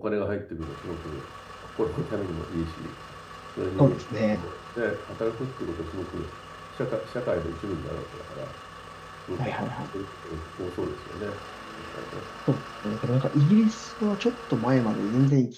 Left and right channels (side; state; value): both; identical; correlation 1.00